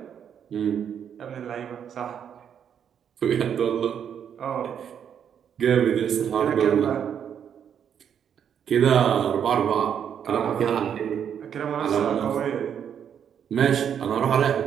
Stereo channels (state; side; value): quieter; left; 8.4 dB